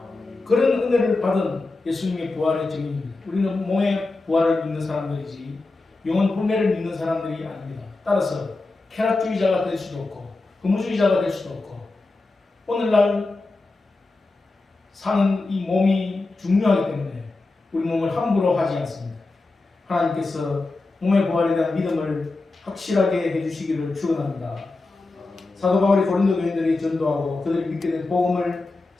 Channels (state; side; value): quieter; right; 3.3 dB